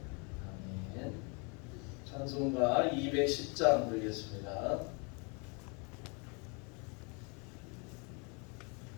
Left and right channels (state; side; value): quieter; right; 33.3 dB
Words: 아멘. 찬송가 210장 드리겠습니다.